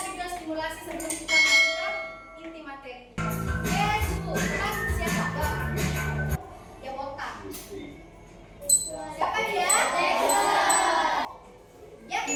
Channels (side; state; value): both; identical; correlation 1.00